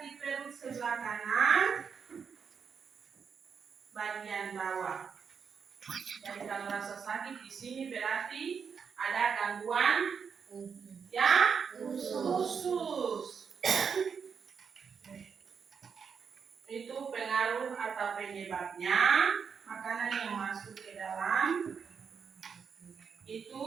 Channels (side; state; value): left; quieter; 6.4 dB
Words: perut sebelah kanan, bagian bawah. Jadi kalau rasa sakit di sini berarti ada gangguan ya usus. Itu pengaruh atau penyebabnya makanan yang masuk ke dalam itu